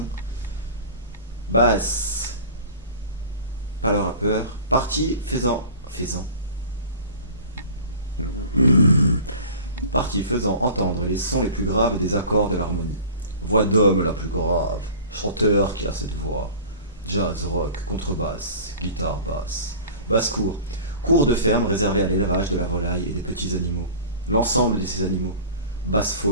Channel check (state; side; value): inverted; both; correlation -0.40